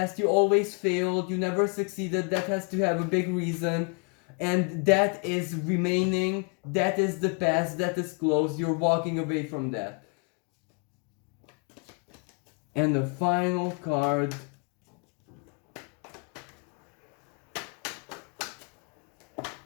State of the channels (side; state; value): right; quieter; 35.7 dB